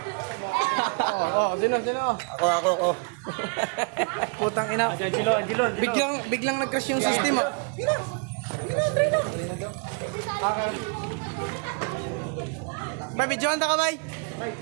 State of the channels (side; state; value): left; quieter; 35.2 dB